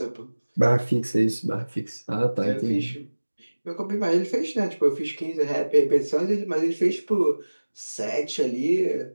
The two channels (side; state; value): both; inverted; correlation -1.00